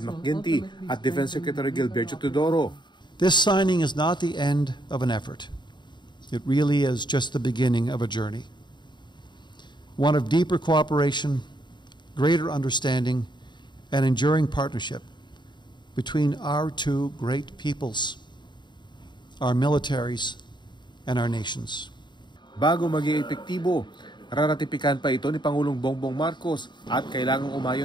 McGuinty at Defense Secretary Gilberto Teodoro. This signing is not the end of an effort. It really is just the beginning of a journey. One of deeper cooperation, greater understanding, and enduring partnership between our two great peoples, our militaries, and our nations. Bago maging epektibo, raratipikan pa ito ni Pangulong Bongbong Marcos at kailangang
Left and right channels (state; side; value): late; right; 0.22 ms